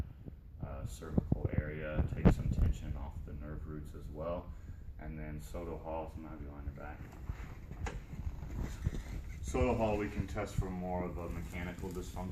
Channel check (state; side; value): identical; both; correlation 1.00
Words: cervical area, take some tension off the nerve roots as well. And then Soto Hall, so I'm going to have you on your back. Soto Hall, we can test for more of a mechanical